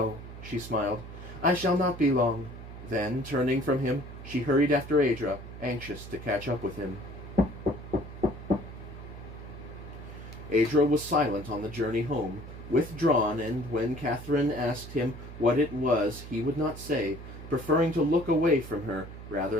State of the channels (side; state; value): right; noise; hum, 13 dB below the sound